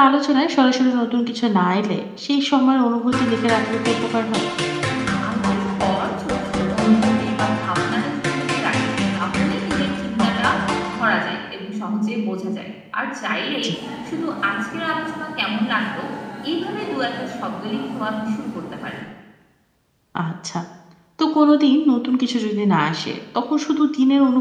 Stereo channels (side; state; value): both; identical; correlation 1.00